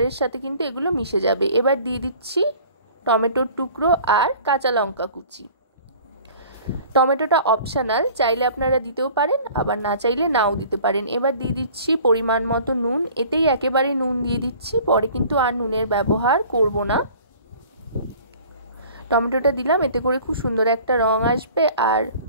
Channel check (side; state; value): both; inverted; correlation -0.47